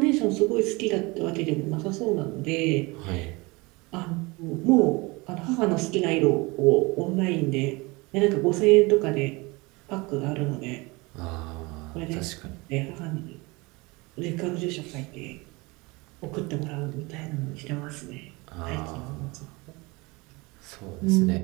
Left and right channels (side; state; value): left; quieter; 24.9 dB